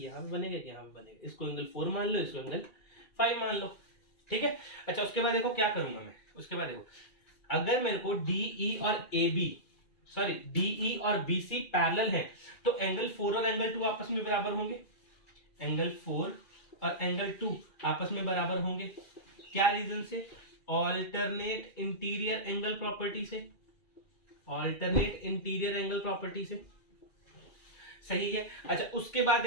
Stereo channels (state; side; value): late; right; 2.4 ms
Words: पे बनेंगे, यहाँ पे बनेंगे। इसको एंगल 4 मान लो, इसको एंगल 5 मान लो, ठीक है। अच्छा, उसके बाद देखो क्या करूंगा मैं। उसके बाद देखो, अगर मेरे को DE और BC पैरेलल है, तो एंगल 4 और एंगल 2 आपस में बराबर होंगे। एंगल 4 और एंगल 2 आपस में बराबर होंगे। क्या रीजन से? ऑल्टरनेट इंटीरियर एंगल प्रॉपर्टी से। सही है। अच्छा, उसके बाद